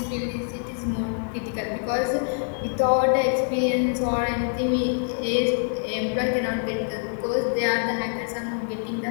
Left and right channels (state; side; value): silent; right; digital silence